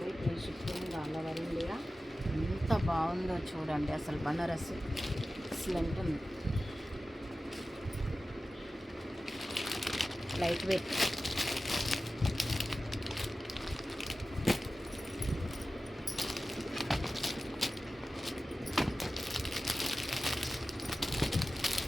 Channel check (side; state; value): both; normal; correlation 0.95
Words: free shipping all over India. ఎంత బాగుందో చూడండి అసలు బనారస్ ఎక్సలెంట్ ఉంది, light weight.